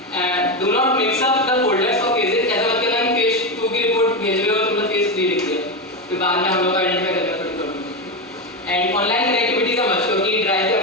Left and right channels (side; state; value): both; normal; correlation 0.13